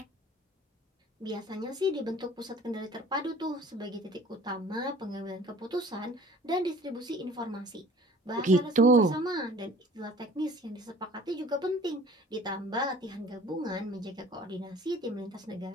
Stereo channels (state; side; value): normal; both; correlation 0.48